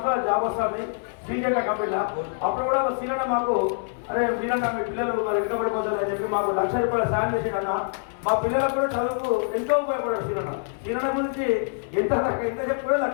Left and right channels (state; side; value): silent; right; digital silence